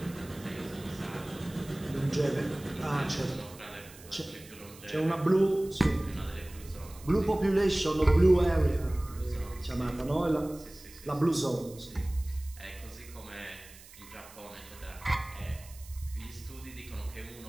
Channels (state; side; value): noise; right; hiss, 20 dB below the sound